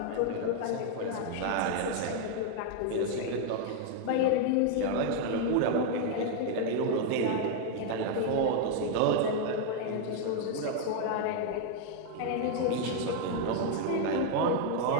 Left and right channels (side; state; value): both; different; correlation 0.00